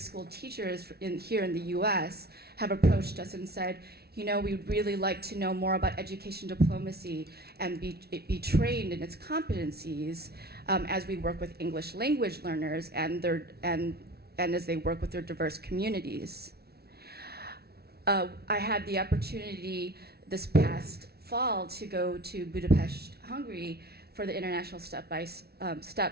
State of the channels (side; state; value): left; late; 0.46 ms